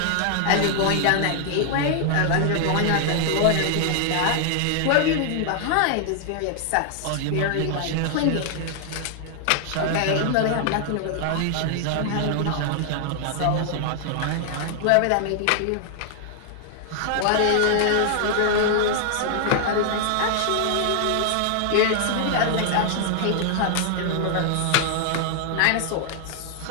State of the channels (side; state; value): both; different; correlation 0.00